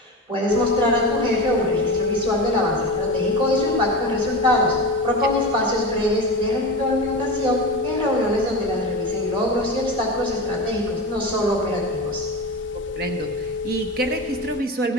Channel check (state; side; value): normal; both; correlation 0.25